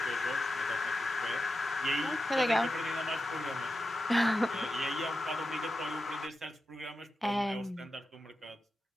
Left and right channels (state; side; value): normal; both; correlation 0.90